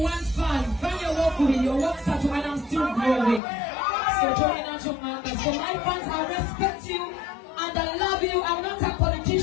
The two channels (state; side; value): drops out; right; at 3.4 s